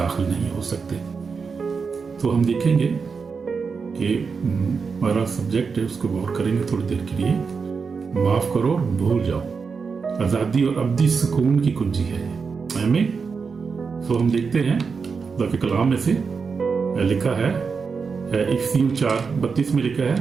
नहीं हो सकते। तो हम देखेंगे कि हमारा सब्जेक्ट है, उसको गौर करेंगे थोड़ी देर के लिए। माफ़ करो और भूल जाओ, आज़ादी और अब्दी सुकून की कुंजी है हमें। तो हम देखते हैं खुदा के कलाम में से लिखा है, इफिसियों 4:32 में लिखा है,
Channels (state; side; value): quieter; left; 5.3 dB